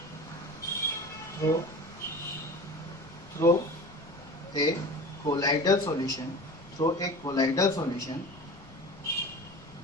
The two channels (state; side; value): noise; left; rumble, 22 dB below the sound